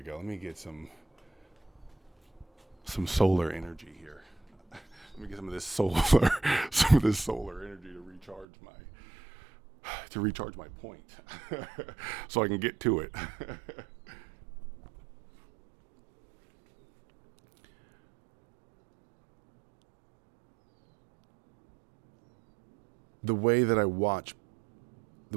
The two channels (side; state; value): left; drops out; at 8.5 s